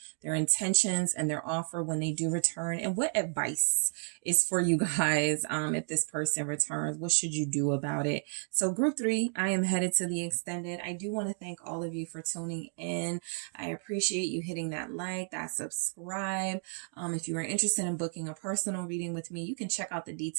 their intentions and their offer when they do return, and what advice is for you guys. If this person returns, what should you do about it? So group 3, I am headed to the extended. I do want to thank all of you for tuning in. I appreciate you hitting that like, that subscribe. If you are interested in booking a personal reading with me, you can check out the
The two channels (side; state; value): left; silent; 56 dB below the other